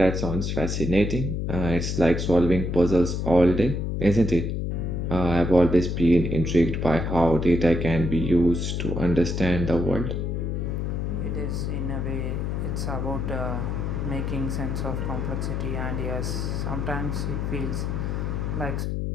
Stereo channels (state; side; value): noise; left; hum, 1 dB below the sound